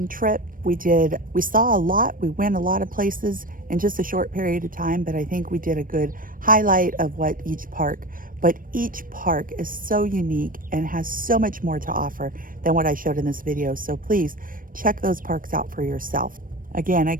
trip. We saw a lot. We went a lot of places in just a short period of time, but I think we did a good highlight of what each park. But each park is so unique and has so much more to offer than what I showed in this video. So please check those parks out for yourself. Again, I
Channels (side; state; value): left; late; 0.40 ms